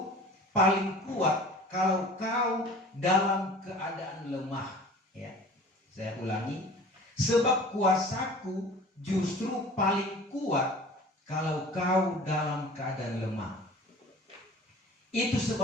paling kuat kalau kau dalam keadaan lemah." Ya, saya ulangi. Sebab kuasaku justru paling kuat kalau kau dalam keadaan lemah. Itu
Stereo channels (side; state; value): both; normal; correlation 0.43